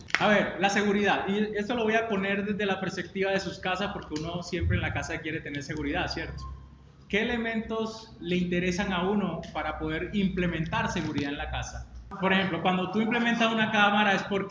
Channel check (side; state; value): both; identical; correlation 1.00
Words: A ver, la seguridad. Y esto lo voy a poner desde la perspectiva de sus casas porque uno siempre en la casa quiere tener seguridad, ¿cierto? ¿Qué elementos le interesan a uno para poder implementar seguridad en la casa? Por ejemplo, cuando tú implementas una cámara es